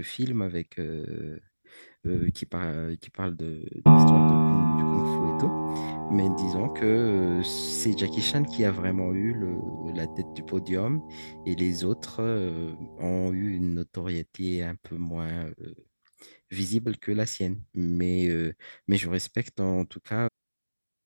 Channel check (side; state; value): both; inverted; correlation -1.00